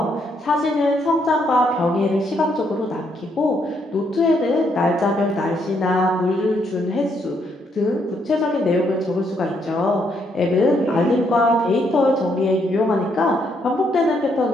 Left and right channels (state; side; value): normal; both; correlation 0.74